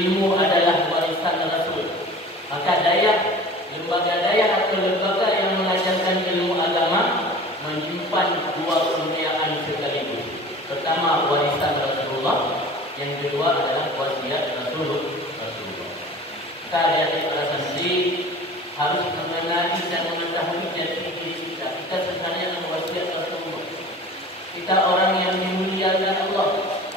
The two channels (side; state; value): both; normal; correlation 0.41